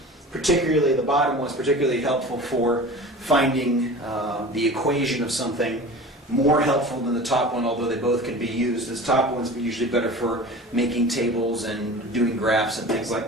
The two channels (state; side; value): normal; both; correlation 0.37